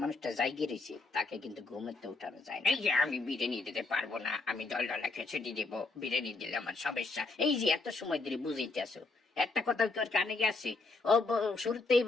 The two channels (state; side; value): quieter; right; 3.7 dB